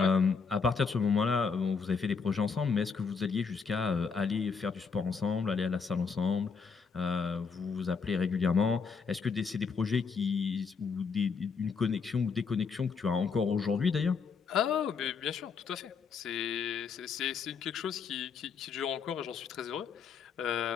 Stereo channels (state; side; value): quieter; right; 5.5 dB